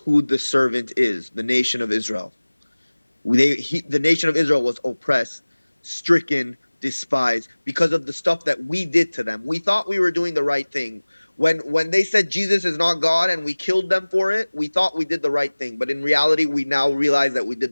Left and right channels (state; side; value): inverted; both; correlation -1.00